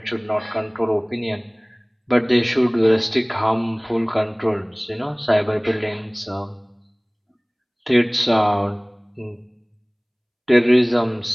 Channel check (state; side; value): identical; both; correlation 1.00